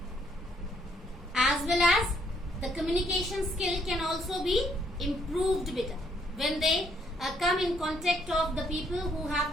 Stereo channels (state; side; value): normal; both; correlation 0.70